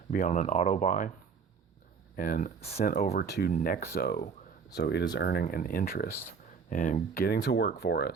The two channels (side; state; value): left; quieter; 5.8 dB